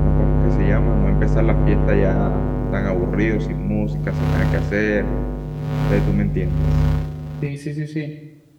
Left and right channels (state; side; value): identical; both; correlation 1.00